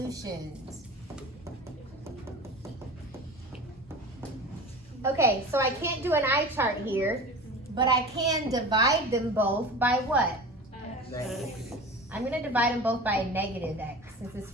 Okay, so I can't do an eye chart here, but I can divide them both by what? Negative. I'm going to divide them both by a negative x, since this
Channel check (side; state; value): both; normal; correlation 0.34